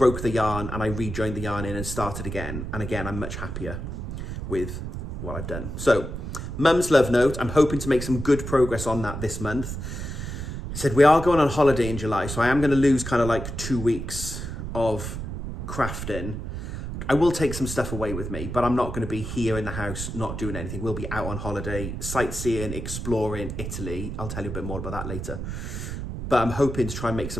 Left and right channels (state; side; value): noise; right; rumble, 6 dB below the sound